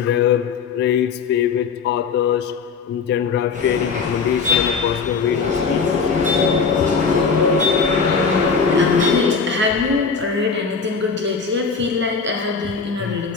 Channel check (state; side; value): quieter; right; 5.3 dB